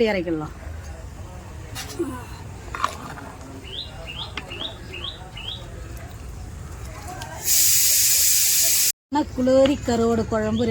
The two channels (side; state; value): both; identical; correlation 1.00